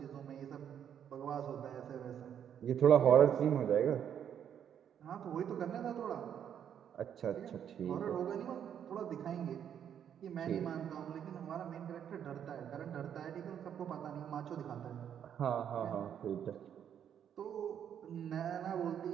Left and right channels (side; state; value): left; quieter; 9.0 dB